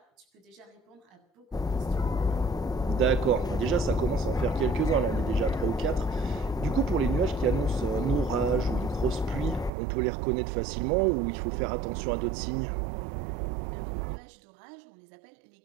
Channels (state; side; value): drops out; left; at 9.7 s